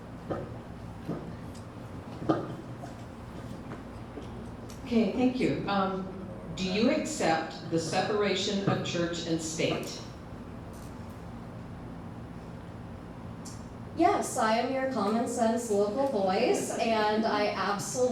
Okay, thank you. Do you accept the separation of church and state? Yes, I am your common sense local voice, and I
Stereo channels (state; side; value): identical; both; correlation 1.00